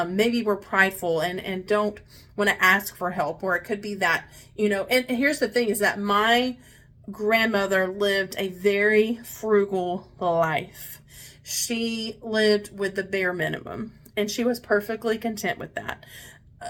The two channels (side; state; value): both; identical; correlation 1.00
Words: maybe we're prideful and don't want to ask for help, or it could be that, and here's the thing is that my grandmother lived a very frugal life. She lived with the bare minimum and she was perfectly content with that.